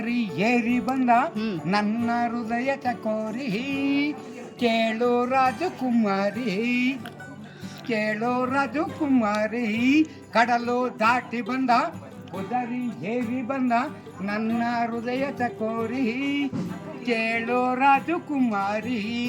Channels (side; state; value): both; identical; correlation 1.00